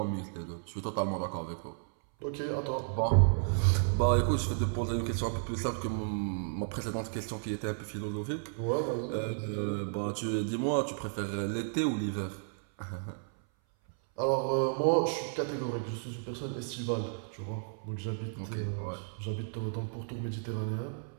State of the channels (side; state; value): left; silent; 56 dB below the other